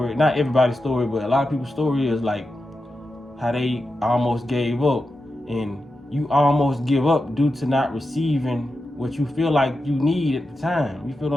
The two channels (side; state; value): both; normal; correlation 0.90